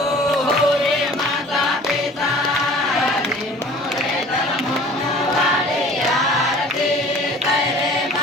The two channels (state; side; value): normal; both; correlation 0.47